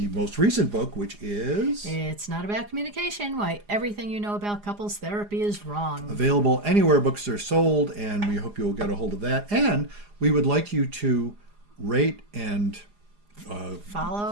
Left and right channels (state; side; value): late; left; 4.9 ms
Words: most recent book, which is It's not about communication. Why everything you know about couples therapy is wrong. available anywhere books are sold. And we hope you'll get a hold of that. And we would like you to rate and